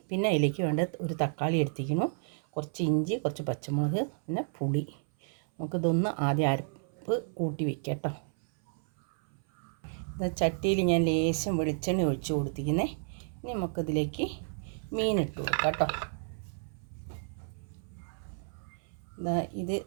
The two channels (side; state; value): left; silent; 57 dB below the other